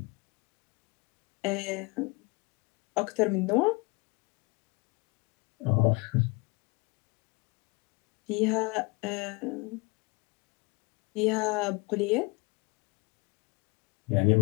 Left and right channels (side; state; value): right; quieter; 27.7 dB